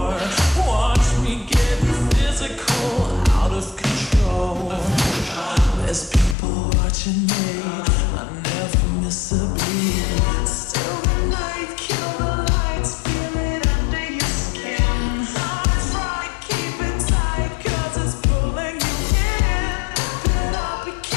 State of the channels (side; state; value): right; drops out; at 6.4 s